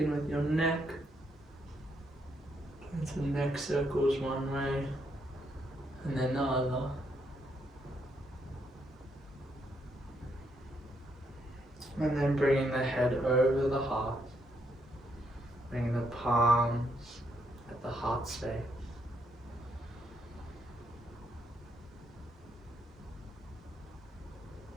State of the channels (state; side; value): normal; both; correlation 0.76